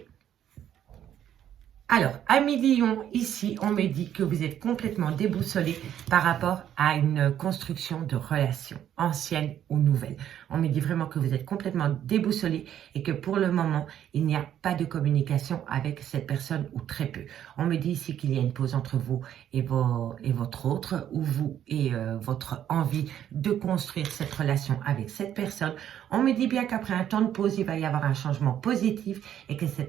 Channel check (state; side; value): quieter; left; 10.4 dB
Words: Alors, amis Lion, ici, on me dit que vous êtes complètement déboussolé par rapport à une construction de relations, anciennes ou nouvelles. On me dit vraiment que vous êtes complètement déboussolé et que pour le moment, il n'y a pas de communication avec cette personne ou très peu. On me dit ici qu'il y a une pause entre vous et votre autre, ou vous et votre envie de construire cette relation avec cette personne. On me dit bien qu'après un temps de pause, il va y avoir un changement positif et que